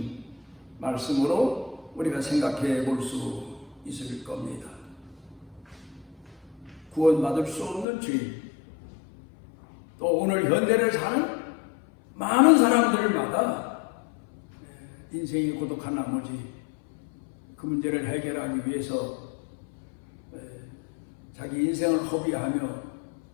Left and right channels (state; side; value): drops out; right; at 7.9 s